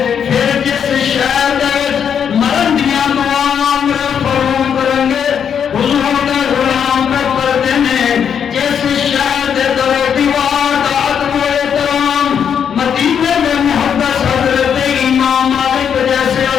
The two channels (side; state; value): right; quieter; 7.9 dB